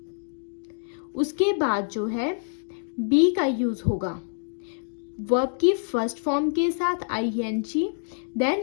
उसके बाद जो है बी का यूज होगा, वर्ब की फर्स्ट फॉर्म के साथ ING,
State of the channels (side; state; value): right; silent; digital silence